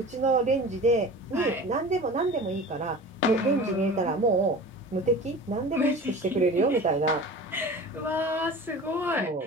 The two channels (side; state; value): both; normal; correlation 0.37